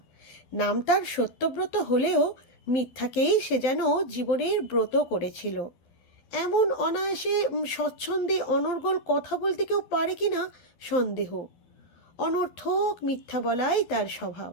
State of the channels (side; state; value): right; late; 12 ms